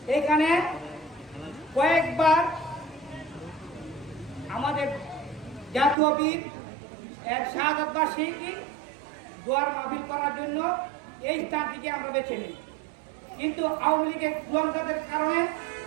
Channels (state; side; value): drops out; left; at 6.0 s